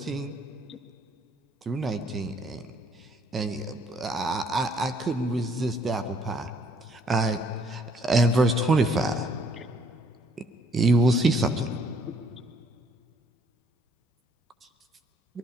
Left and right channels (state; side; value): normal; both; correlation 0.65